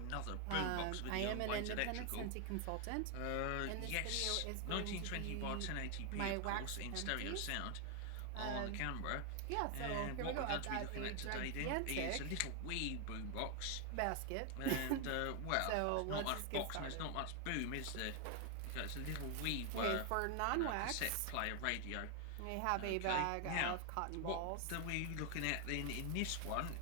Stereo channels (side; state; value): both; different; correlation 0.00